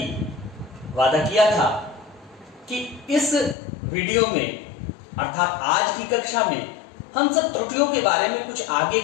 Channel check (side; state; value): right; drops out; at 3.6 s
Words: वादा किया था कि इस वीडियो में अर्थात आज की कक्षा में हम सब त्रुटियों के बारे में कुछ आगे